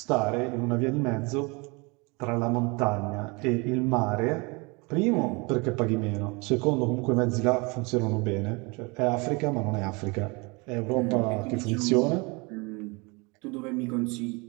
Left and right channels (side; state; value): left; quieter; 28.2 dB